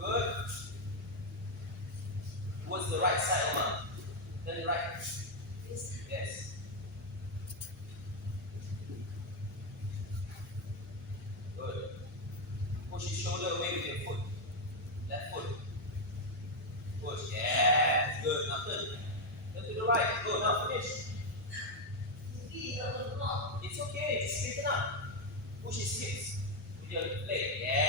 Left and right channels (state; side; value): normal; both; correlation 0.02